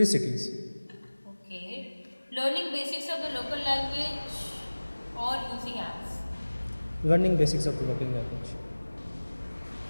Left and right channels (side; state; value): both; inverted; correlation -1.00